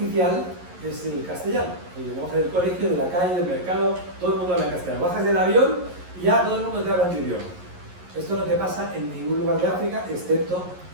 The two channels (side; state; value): left; late; 11 ms